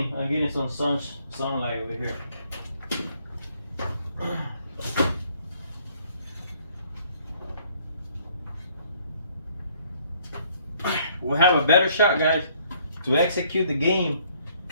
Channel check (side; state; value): both; inverted; correlation -0.63